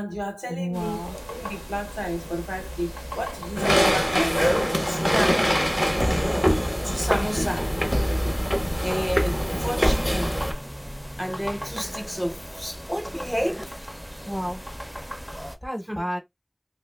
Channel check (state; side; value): identical; both; correlation 1.00